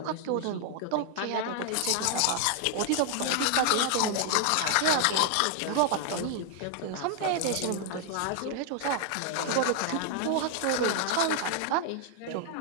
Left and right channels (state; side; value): different; both; correlation 0.00